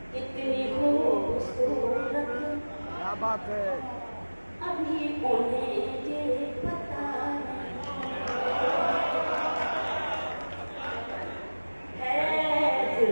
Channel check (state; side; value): inverted; both; correlation -1.00